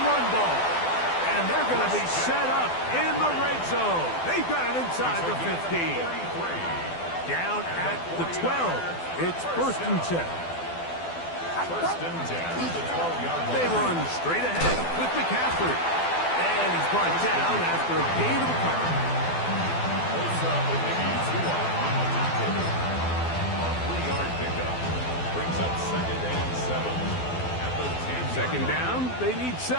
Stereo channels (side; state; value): right; late; 12 ms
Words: run ball. And they're going to be set up in the red zone. They've got it inside the 15. Down at the 12. It's 1st and 10. 1st and 10 at the 12-yard line. They run straight ahead with McCaffrey. And he's brought down after a gain of a couple. Osa Odighizuwa on the tackle. A 3-yard pickup. Brings up 2nd and 7 at the 10-yard 2nd down, they need